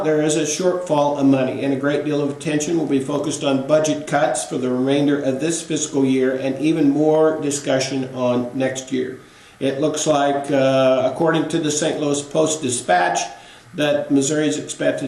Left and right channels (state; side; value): identical; both; correlation 1.00